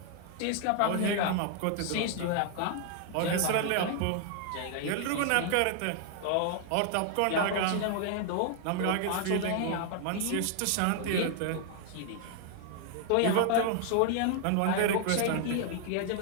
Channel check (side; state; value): both; different; correlation 0.00